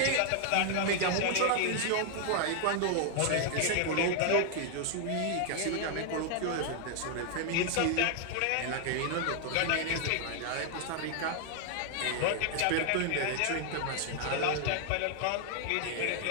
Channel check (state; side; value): different; both; correlation 0.00